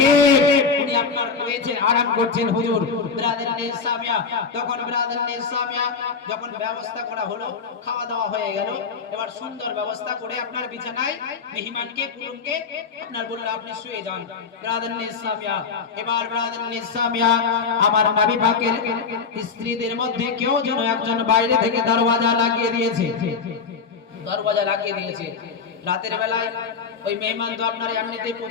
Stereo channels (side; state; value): right; quieter; 5.4 dB